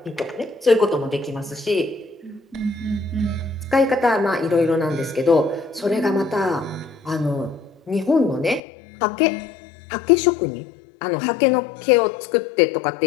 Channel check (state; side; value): drops out; right; at 8.6 s